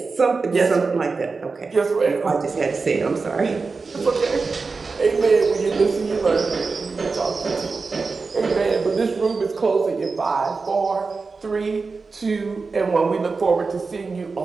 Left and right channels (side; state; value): left; quieter; 4.4 dB